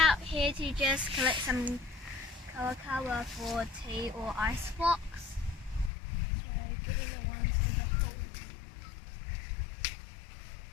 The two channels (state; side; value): drops out; right; at 5.9 s